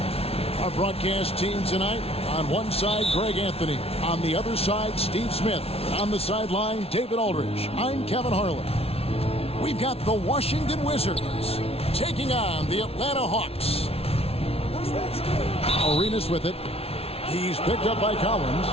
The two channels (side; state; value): right; late; 0.29 ms